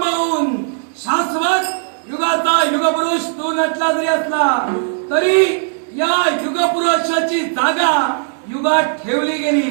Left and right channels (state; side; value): silent; left; digital silence